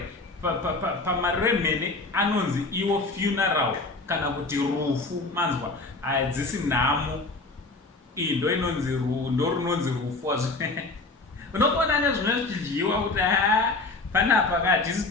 pamariro emhene anonzi iwo funeral kana kuti rufu. Manzwa hadzisi nhamo ndo inonzi ndo runonzi rufu. Unokuona nezvimwe zvichidyiwa kuti panapa hatisi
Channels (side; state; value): right; quieter; 3.5 dB